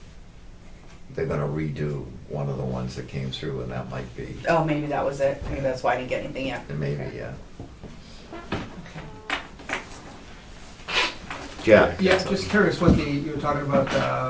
gonna redo one of the ones that came through, and that might be, Oh, maybe that was it, maybe that's why I didn't get anything yet. maybe, yeah. Jack, Yeah, just curious what you were talking about,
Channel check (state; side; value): identical; both; correlation 1.00